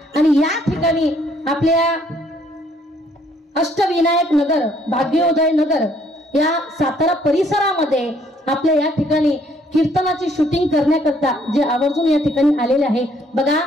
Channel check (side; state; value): both; normal; correlation 0.65